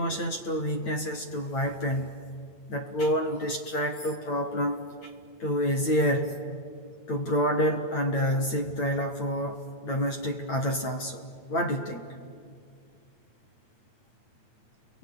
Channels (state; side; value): late; right; 8.9 ms